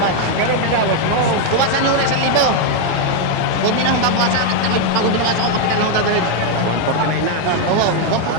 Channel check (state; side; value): different; both; correlation 0.01